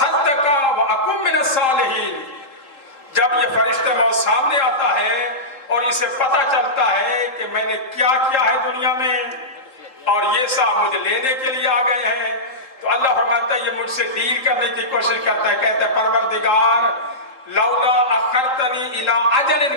وَأَكُن مِّنَ الصَّالِحِينَ۔ جب یہ فرشتہ موت سامنے آتا ہے اور اسے پتہ چلتا ہے کہ میں نے کیا کیا ہے دنیا میں اور یہ صاحب مجھے لینے کے لیے آ گئے ہیں، تو اللہ فرماتا ہے یہ مجھ سے ڈیل کرنے کی کوشش کرتا ہے، کہتا ہے پروردگار لولا اخرتنی الی اجل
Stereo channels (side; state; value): right; late; 3.8 ms